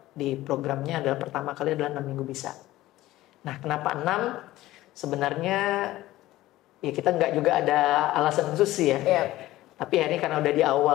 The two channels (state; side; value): quieter; right; 16.3 dB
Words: di programnya adalah pertama kali adalah 6 minggu bisa. Nah kenapa 6? Sebenarnya ya kita nggak juga ada alasan khusus sih ya. Yeah. Tapi akhirnya karena udah di